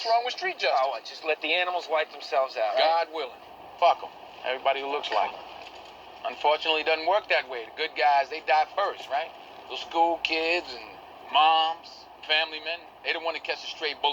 wrong with street justice? Oh, just let the animals wipe themselves out, God willing. Fuck them. Everybody who looks like them. Unfortunately, it doesn't work that way. The good guys, they die first, right? The school kids and moms, family men, they don't want to catch the stray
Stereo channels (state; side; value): identical; both; correlation 1.00